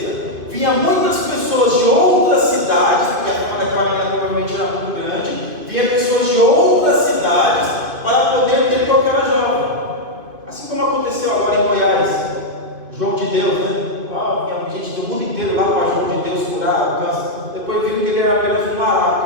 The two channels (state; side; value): late; left; 2.5 ms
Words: vinha muitas pessoas de outras cidades, porque aquela menina provavelmente era muito grande, vinha pessoas de outras cidades para poder ter com aquela jovem. Assim como aconteceu agora em Goiás, João de Deus, né? Vinha gente do mundo inteiro lá para João de Deus curar o câncer. Depois viram que ele era apenas um